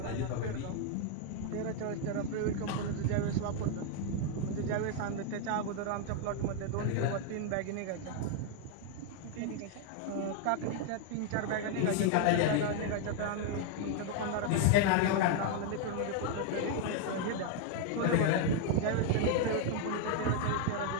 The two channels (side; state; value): both; different; correlation 0.00